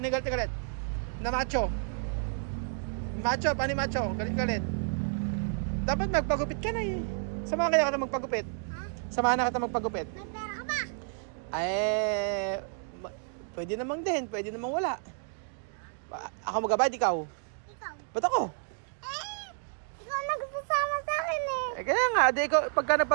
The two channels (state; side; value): silent; left; 57 dB below the other